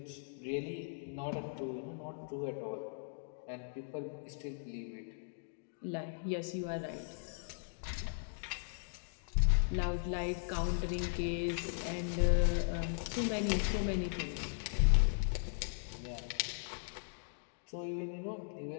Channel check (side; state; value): right; silent; digital silence